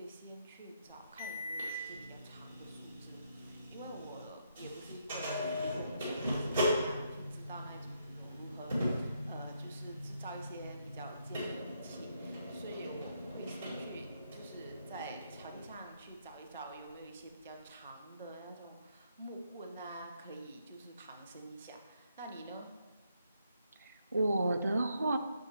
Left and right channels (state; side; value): inverted; both; correlation -0.76